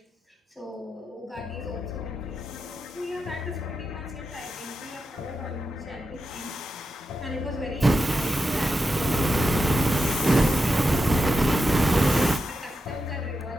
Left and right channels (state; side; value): normal; both; correlation 0.88